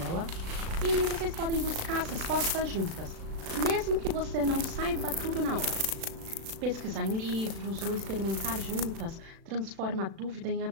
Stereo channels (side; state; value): left; late; 36 ms